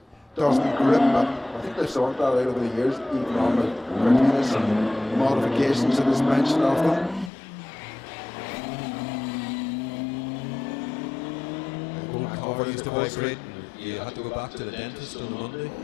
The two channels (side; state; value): right; drops out; at 7.3 s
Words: doesn't grip. But I think they've sorted that out over the years, even on the Cortinas and modifications to the suspension of them. Old car used to vibrate. You had to go back to the dentist on a Monday.